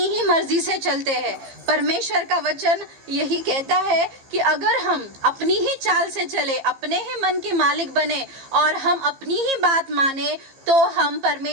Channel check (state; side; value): late; left; 15 ms